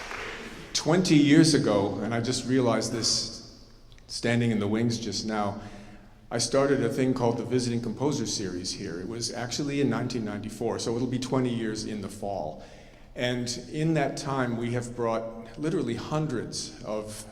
20 years ago, and I just realized this standing in the wings just now, I started a thing called the Visiting Composer Series here. It was actually in 1994, so it'll be 20 years in the fall. And in that time, we have brought literally hundreds of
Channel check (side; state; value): both; identical; correlation 1.00